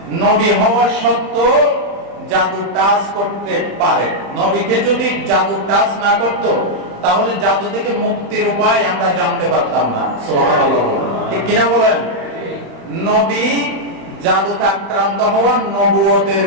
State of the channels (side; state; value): left; late; 35 ms